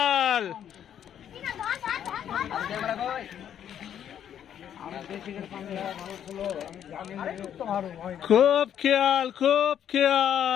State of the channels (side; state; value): right; quieter; 9.6 dB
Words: খুব খেয়াল খুব